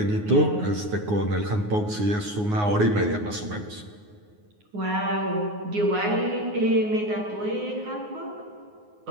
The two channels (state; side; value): late; left; 9.6 ms